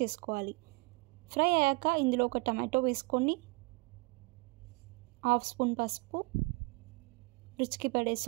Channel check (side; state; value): left; quieter; 27.1 dB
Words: చేసుకోవాలి. ఫ్రై అయ్యాక ఇందులో ఒక టమాటో వేసుకోండి. 1/2 స్పూన్ పసుపు, రుచికి పడే